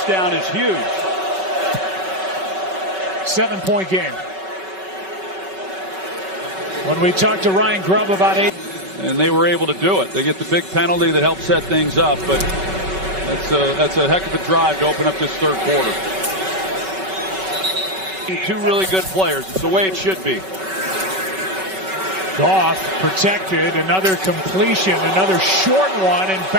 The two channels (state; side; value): late; left; 5.3 ms